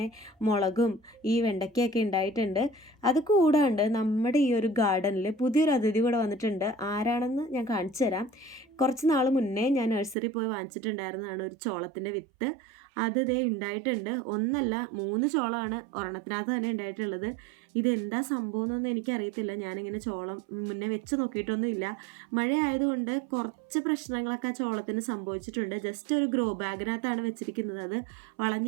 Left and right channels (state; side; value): drops out; left; at 10.2 s